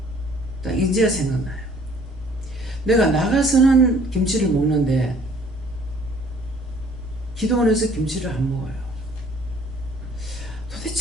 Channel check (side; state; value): both; normal; correlation 0.56